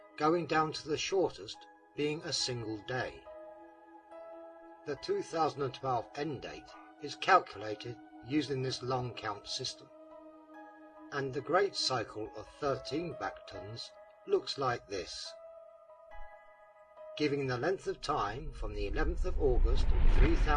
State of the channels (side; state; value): both; identical; correlation 1.00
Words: going down to the shortest being a single day. The 2012 end date is calculated using this long count system, and the great cycle of 13 Bactons looks like this, giving the length of time from the 11th of August